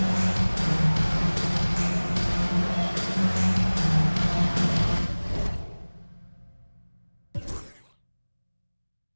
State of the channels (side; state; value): both; inverted; correlation -1.00